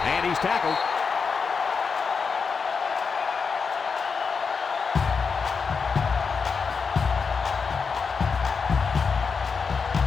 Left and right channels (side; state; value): right; quieter; 5.4 dB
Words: And he's tackled.